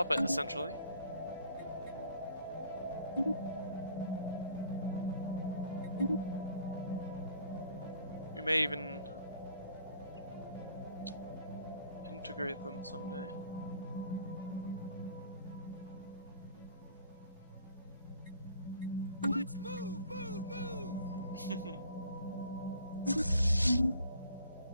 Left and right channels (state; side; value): inverted; both; correlation -0.56